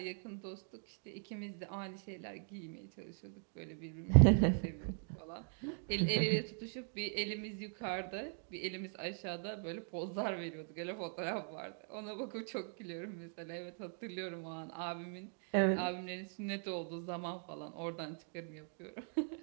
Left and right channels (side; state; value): left; silent; 51 dB below the other